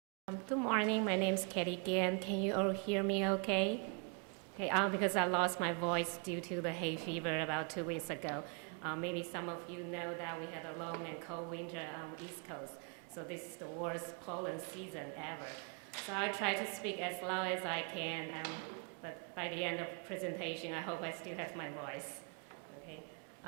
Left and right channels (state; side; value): quieter; left; 36.5 dB